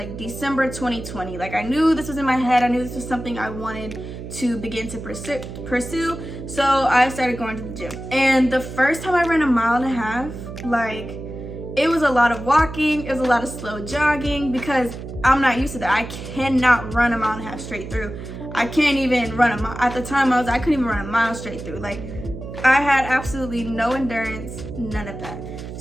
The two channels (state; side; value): noise; right; hum, 10 dB below the sound